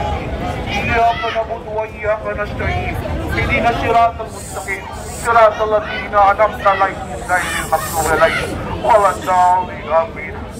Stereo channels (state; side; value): identical; both; correlation 1.00